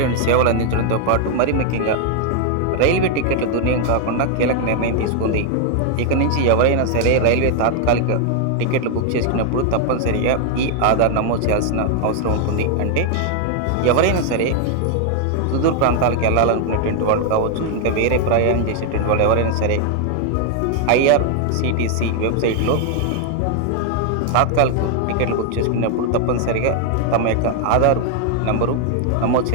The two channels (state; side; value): different; both; correlation 0.00